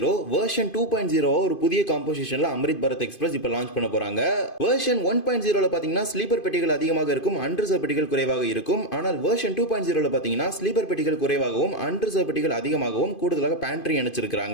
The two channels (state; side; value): late; right; 2.5 ms